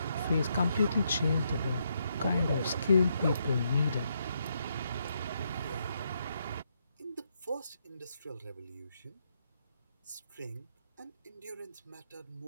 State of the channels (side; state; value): both; inverted; correlation -0.78